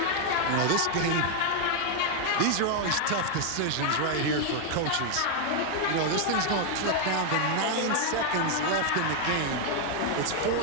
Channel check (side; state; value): both; different; correlation 0.00